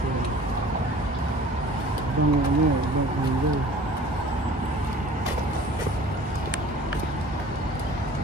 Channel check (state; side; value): normal; both; correlation 0.47